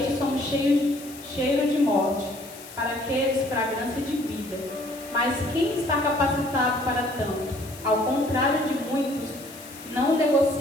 somos cheiro de morte, para aqueles fragrância de vida. Mas quem está capacitado para tanto? Ao contrário de muitos, não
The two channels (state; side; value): noise; left; hiss, 17 dB below the sound